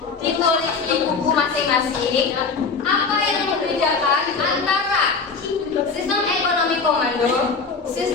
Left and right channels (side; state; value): right; quieter; 4.8 dB